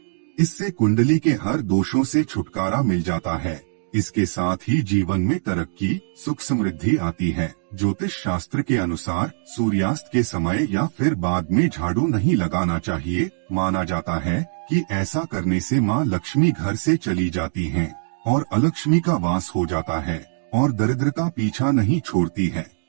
इससे कुंडली के हर दोषों से छुटकारा मिल जाता है। इसके साथ ही जीवन में तरक्की, सुख समृद्धि आती है। ज्योतिष शास्त्र के अनुसार सूर्यास्त के समय या फिर बाद में झाड़ू नहीं लगाना चाहिए। माना जाता है कि ऐसा करने से मां लक्ष्मी घर से चली जाती हैं और अलक्ष्मी का वास हो जाता है और दरिद्रता पीछा नहीं छोड़ती है।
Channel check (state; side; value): silent; left; digital silence